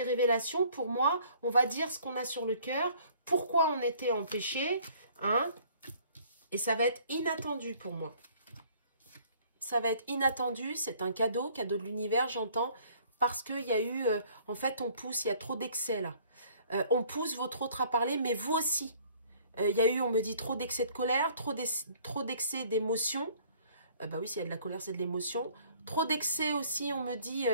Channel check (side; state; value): both; inverted; correlation -0.57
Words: révélations, pour moi, on va dire ce qu'on a sur le cœur, pourquoi on était empêché, hein? Et ça va être inattendu pour moi. Ça va être inattendu, c'est un cadeau de l'univers, j'entends, parce qu'il y a eu, en fait, on pousse, il y a trop d'excès là. On pousse votre autre à parler, mais vous aussi. Il y a eu, on me dit, trop d'excès de colère, trop d'excès d'émotion. Bah oui, s'il y a de la colère, c'est de l'émotion. Trop d'excès aussi, on me dit,